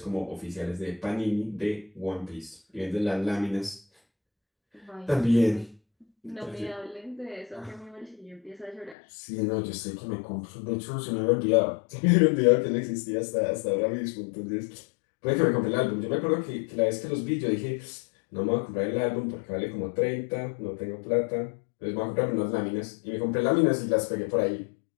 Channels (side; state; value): right; drops out; at 9.0 s